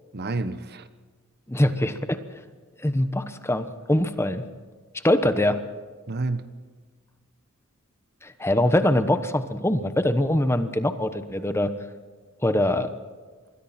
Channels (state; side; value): normal; both; correlation 0.81